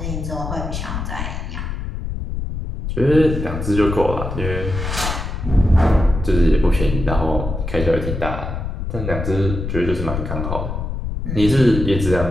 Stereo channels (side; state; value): left; noise; rumble, 5 dB below the sound